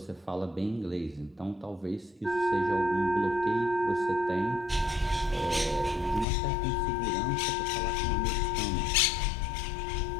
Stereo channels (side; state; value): right; drops out; at 6.2 s